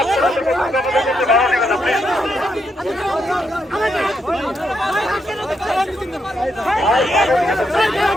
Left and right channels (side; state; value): both; normal; correlation 0.80